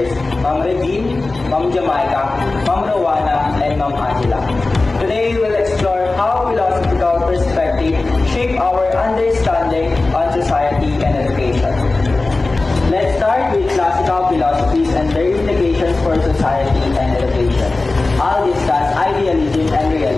Ma'am Regine, Ma'am Jamaica, Ma'am Rowana, and Ma'am Angela. Today we'll explore how philosophical perspective shape our understanding on society and education. Let's start with classical philosophies and their implications for society and education. I'll discuss idealism and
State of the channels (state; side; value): quieter; right; 3.3 dB